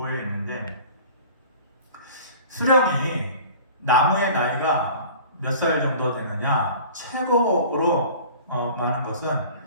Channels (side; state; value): both; inverted; correlation -0.43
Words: 있는데 수령이 나무의 나이가 몇 살 정도 되느냐 최고로 많은 것은